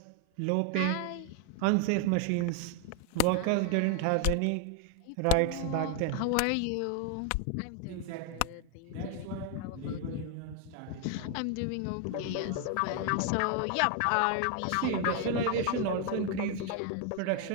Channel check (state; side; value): different; both; correlation 0.01